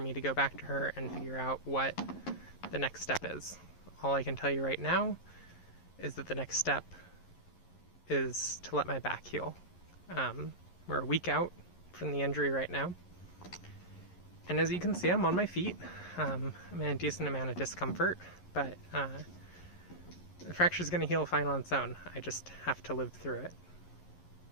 to go back to her and figure out what the next step is. All I can tell you right now is that the next step is to let my back heal. We're a week out from the injury right now, and as you can see, I'm on my feet. I'm in a decent amount of discomfort, but the fracture's going to heal fine on its own. I just have to live through it.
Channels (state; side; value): late; right; 11 ms